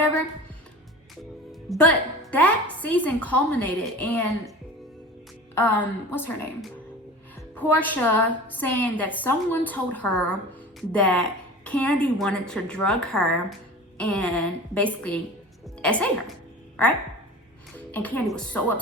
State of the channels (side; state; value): both; normal; correlation 0.37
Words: But that season culminated in, what's her name? Portia saying that someone told her that Kandi wanted to drug her and basically SA her, right? And Kandi was so